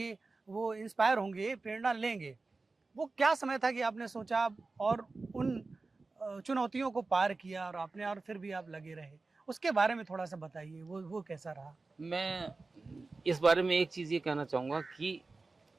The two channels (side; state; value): left; quieter; 3.7 dB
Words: वो इंस्पायर होंगे, प्रेरणा लेंगे, वो क्या समय था कि आपने सोचा और उन चुनौतियों को पार किया और आपने, और फिर भी आप लगे रहे? उसके बारे में थोड़ा सा बताइए, वो कैसा रहा? मैं इस बारे में एक चीज़ ये कहना चाहूँगा कि